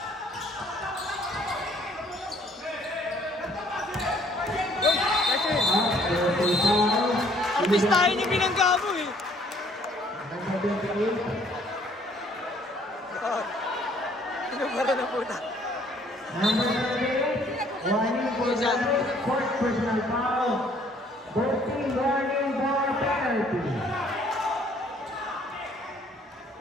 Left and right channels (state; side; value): normal; both; correlation 0.61